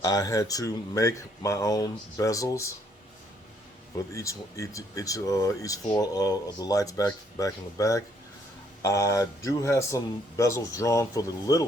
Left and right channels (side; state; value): both; normal; correlation 0.68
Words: I had to make my own bezels with each four of the lights back in the back. I do have some bezels drawn for the